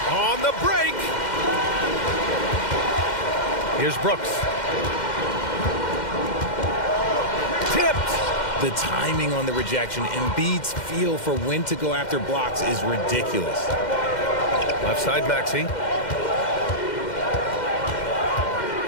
on the break. Here's Brooks. Tipped. The timing on the rejection, Embiid's feel for when to go after blocks is ridiculous. Left side, Maxey.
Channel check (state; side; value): late; right; 2.1 ms